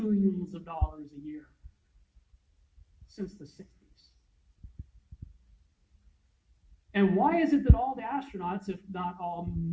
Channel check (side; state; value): both; identical; correlation 1.00